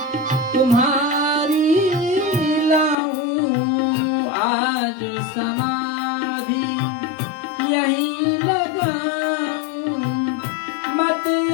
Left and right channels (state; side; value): drops out; right; at 3.0 s